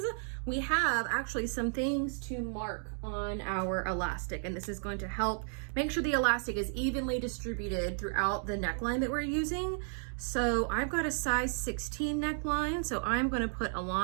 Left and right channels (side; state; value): left; silent; 56 dB below the other